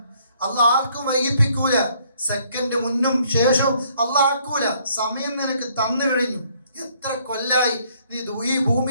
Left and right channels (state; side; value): inverted; both; correlation -0.65